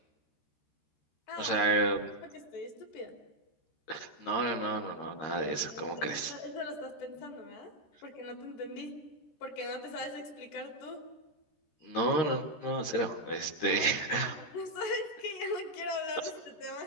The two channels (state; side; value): late; right; 13 ms